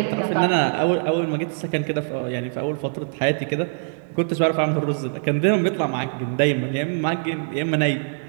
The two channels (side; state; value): left; silent; digital silence